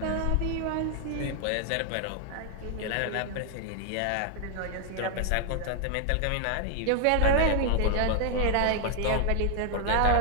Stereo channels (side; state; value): both; different; correlation 0.00